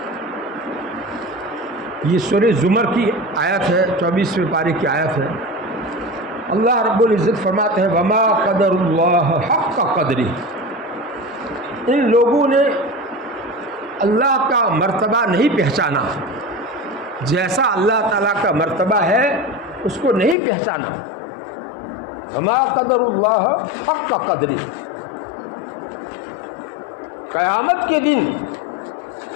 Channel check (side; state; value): right; drops out; at 20.4 s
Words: یہ سورہ زمر کی آیت ہے، 24ویں پارے کی آیت ہے۔ اللہ رب العزت فرماتے ہیں وما قدر اللہ حق قدری، ان لوگوں نے اللہ کا مرتبہ نہیں پہچانا، جیسا اللہ تعالیٰ کا مرتبہ ہے اس کو نہیں پہچانا۔ وما قدر اللہ حق قدری، قیامت کے دن